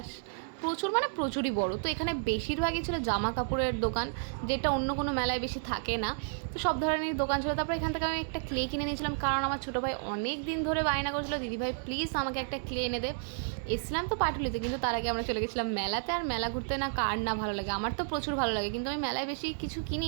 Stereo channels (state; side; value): silent; left; digital silence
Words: প্রচুর মানে প্রচুরই বড়। তো এখানে বেশিরভাগই ছিল জামা কাপড়ের দোকান, যেটা অন্য কোনো মেলায় বেশি থাকে না। তো সব ধরনের দোকান ছিল। তারপর এখান থেকে আমি একটা ক্লে কিনে নিয়েছিলাম, কারণ আমার ছোটো ভাই অনেক দিন ধরে বায়না করছিল, দিদিভাই প্লিজ আমাকে একটা ক্লে এনে দে। এসছিলাম তো পাটুলিতে, কিন্তু তার আগে আমরা চলে গেছিলাম মেলাতে। আর মেলা ঘুরতে না কার না ভালো লাগে, আমার তো প্রচুর ভালো লাগে, কিন্তু আমি মেলায় বেশি কিছু কিনি